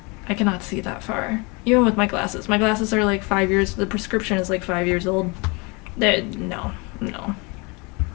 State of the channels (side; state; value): right; quieter; 29.2 dB